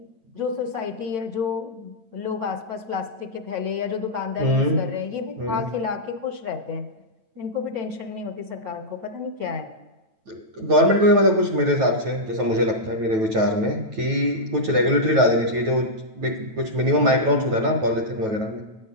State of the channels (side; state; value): left; late; 9.1 ms